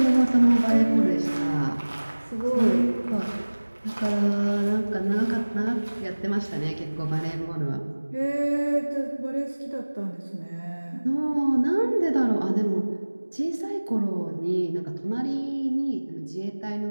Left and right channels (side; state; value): both; inverted; correlation -1.00